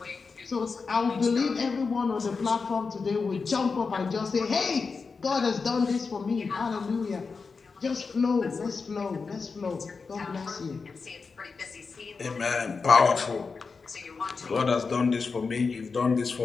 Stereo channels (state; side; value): quieter; right; 4.8 dB